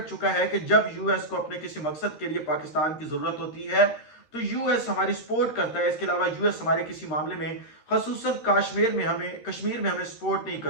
ہے کہ جب یو ایس کو اپنے کسی مقصد کے لیے پاکستان کی ضرورت ہوتی ہے تو یو ایس ہماری سپورٹ کرتا ہے، اس کے علاوہ یو ایس ہمارے کسی معاملے میں خصوصاً کشمیر میں ہمیں سپورٹ نہیں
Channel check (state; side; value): late; right; 13 ms